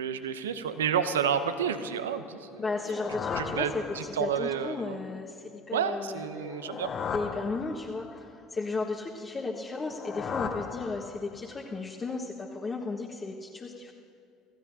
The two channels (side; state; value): both; normal; correlation 0.24